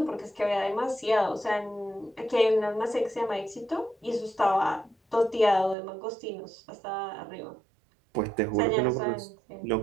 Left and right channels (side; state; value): left; drops out; at 5.8 s